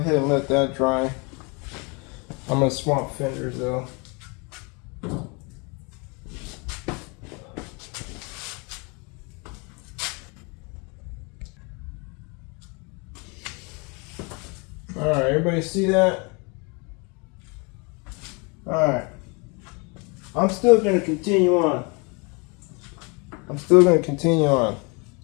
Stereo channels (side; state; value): right; quieter; 31.0 dB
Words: and let that dry. I'm gonna swap fenders though. Alright, everybody see that? Alright. I'm still gonna continue on.